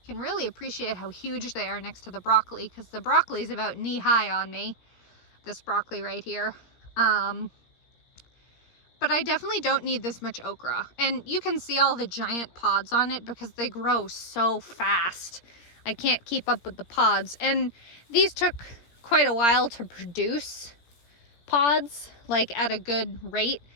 You can really appreciate how huge they are next to the broccoli, because the broccoli is about knee high on me. This broccoli right here. But I definitely don't need this much okra. And you can see all the giant pods on it because they grow so fast. I can't keep up with the pods. And these took quite a while to produce pods, like at a good rate.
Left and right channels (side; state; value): right; late; 17 ms